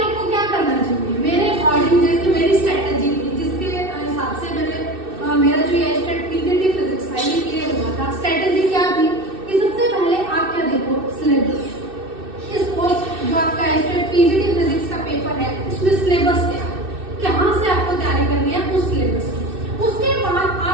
क्या करना चाहिए, मेरे अकॉर्डिंग जैसे मेरी स्ट्रेटेजी थी जिसके हिसाब से मेरा जो एस्टेट पीजीटी फिजिक्स था ये क्लियर हुआ था। स्ट्रेटेजी क्या थी कि सबसे पहले आप क्या देखो, सिलेबस। इस कोर्स जो आपका एस्टेट पीजीटी फिजिक्स का पेपर है उसमें सिलेबस क्या है, कहाँ से आपको तैयारी करनी है उस सिलेबस की। उसके बाद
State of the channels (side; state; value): left; late; 2.6 ms